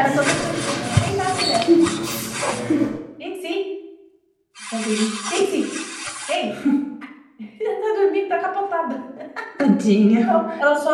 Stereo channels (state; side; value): identical; both; correlation 1.00